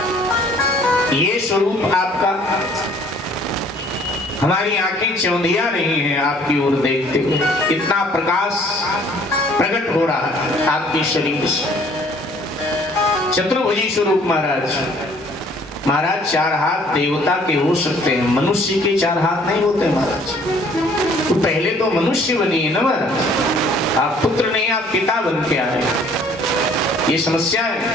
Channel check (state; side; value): normal; both; correlation 0.57